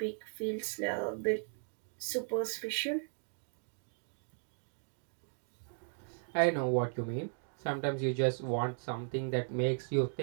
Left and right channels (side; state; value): left; silent; digital silence